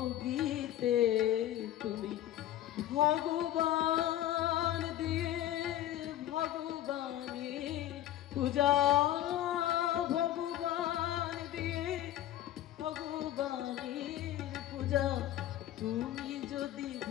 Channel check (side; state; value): right; quieter; 13.0 dB